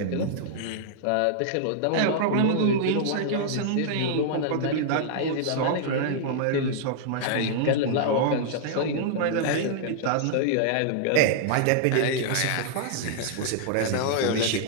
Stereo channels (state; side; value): different; both; correlation -0.01